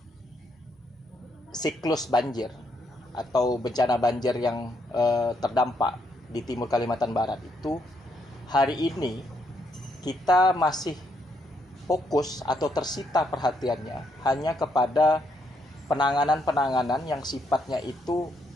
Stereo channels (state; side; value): normal; both; correlation 0.75